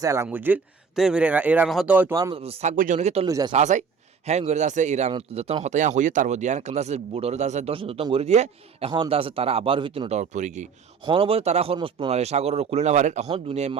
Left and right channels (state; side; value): quieter; left; 5.9 dB